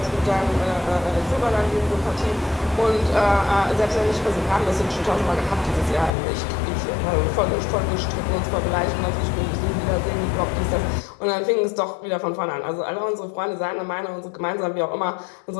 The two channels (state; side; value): drops out; right; at 6.1 s